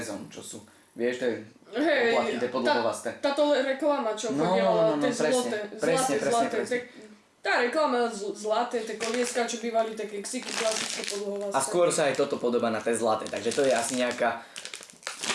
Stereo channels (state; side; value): identical; both; correlation 1.00